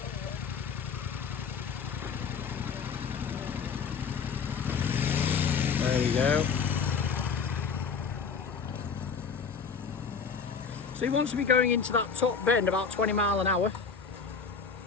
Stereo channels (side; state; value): right; quieter; 5.8 dB